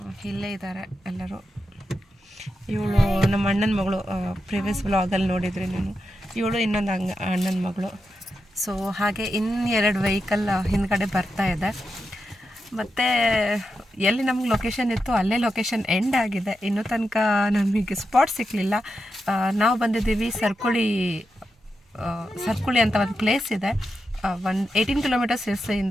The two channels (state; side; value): normal; both; correlation 0.88